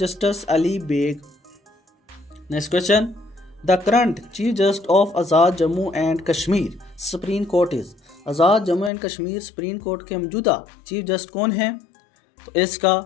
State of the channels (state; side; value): drops out; right; at 8.9 s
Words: Ali Baig. Next question, the current chief justice of Azad Jammu and Kashmir supreme court is? Azad Jammu and Kashmir supreme court के मौजूदा चीफ जस्टिस कौन हैं? तो इसका